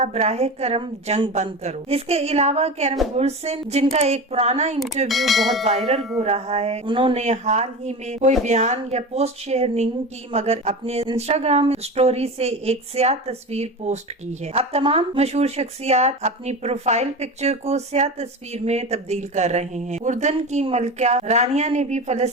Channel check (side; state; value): both; normal; correlation 0.27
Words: बराहे करम जंग बंद करो। इसके अलावा कैरम बुर्सन, जिनका एक पुराना इंटरव्यू बहुत वायरल हो रहा है, उन्होंने हाल ही में कोई बयान या पोस्ट शेयर नहीं की, मगर अपने इंस्टाग्राम स्टोरी से एक स्याह तस्वीर पोस्ट की है। अब तमाम मशहूर शख्सियात अपनी प्रोफाइल पिक्चर को स्याह तस्वीर में तब्दील कर रहे हैं। उर्दन की मलका रानिया ने भी